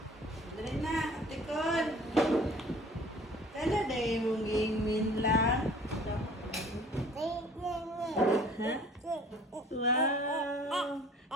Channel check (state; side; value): normal; both; correlation 0.51